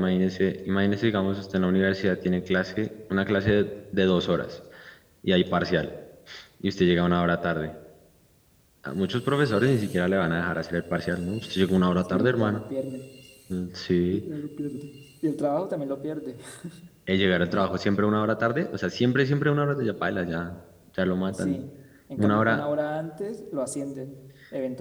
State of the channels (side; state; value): both; identical; correlation 1.00